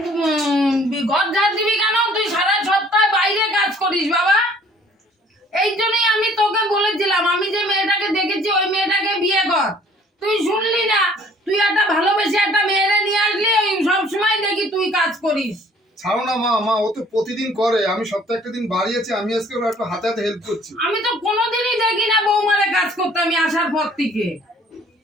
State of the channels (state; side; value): normal; both; correlation 0.56